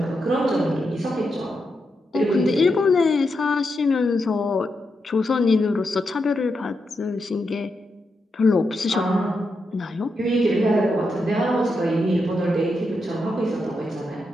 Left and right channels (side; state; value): both; normal; correlation 0.85